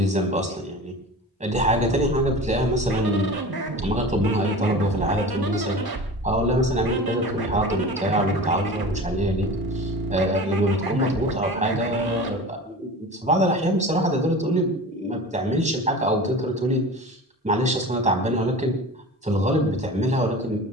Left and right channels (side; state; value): both; normal; correlation 0.35